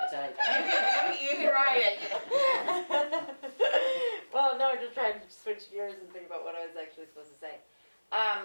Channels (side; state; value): both; inverted; correlation -1.00